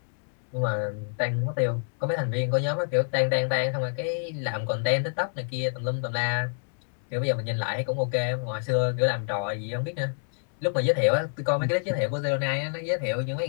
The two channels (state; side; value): silent; right; digital silence